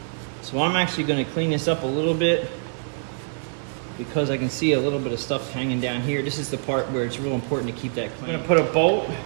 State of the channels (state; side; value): silent; left; 62 dB below the other